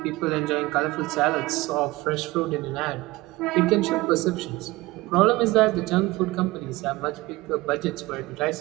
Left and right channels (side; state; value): left; quieter; 20.3 dB